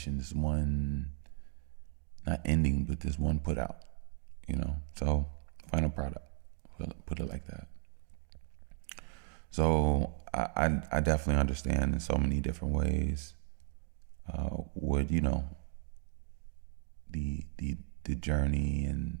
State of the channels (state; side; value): silent; left; digital silence